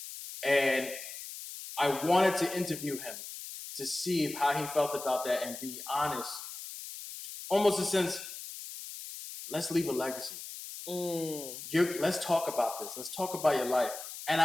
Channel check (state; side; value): noise; left; hiss, 10 dB below the sound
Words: and I wanted to interview him to see how he felt about that and be honest, almost a sense, let's leave a legacy. Let's talk about this. Let's talk about your life. And